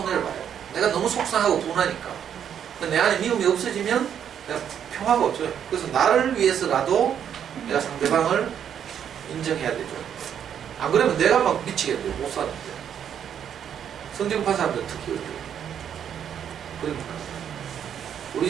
봐요. 내가 너무 속상하고 분하니까. 내 안에 미움이 없어지면 내가 평화가 없어요. 그래서 나를 위해서라도 내가 상대방을 인정해야 되죠. 안 그러면 내가 막 미치겠대요. 못 사는데. 성정파 사람들 특히 어려워요. 그러니까 우리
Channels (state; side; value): quieter; left; 8.8 dB